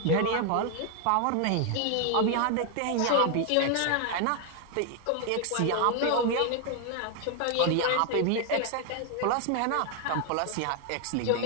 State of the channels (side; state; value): both; different; correlation 0.00